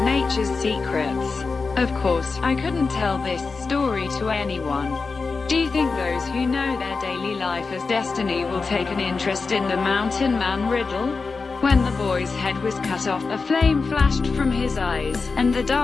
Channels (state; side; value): quieter; right; 4.4 dB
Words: secrets? Of course, I couldn't tell this story to anyone. Do you think those who know their daily life as destiny will take an interest in the mountain man riddle? When the boy's head was cut off, a flame flashed from his eyes, and the